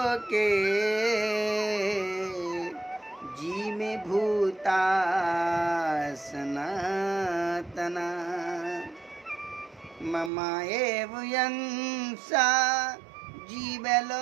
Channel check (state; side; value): drops out; left; at 10.3 s